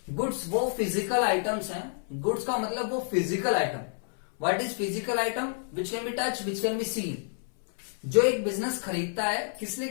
गुड्स वो फिजिकल आइटम्स हैं। गुड्स का मतलब वो physical item. What is physical item? Which can be touch, which can be seen. जो एक बिजनेस खरीदता है, किस लिए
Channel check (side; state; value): right; silent; 59 dB below the other